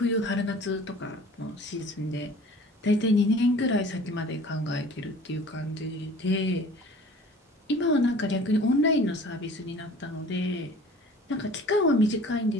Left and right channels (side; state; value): both; normal; correlation 0.46